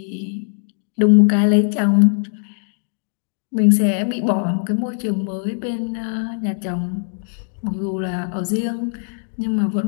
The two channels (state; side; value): silent; right; digital silence